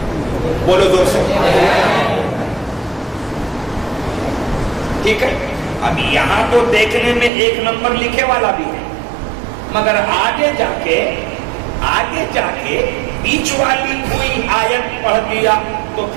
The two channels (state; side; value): drops out; left; at 7.3 s